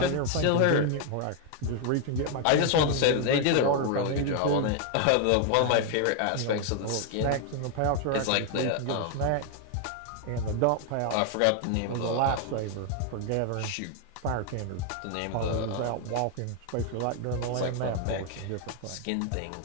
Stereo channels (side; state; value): both; different; correlation 0.00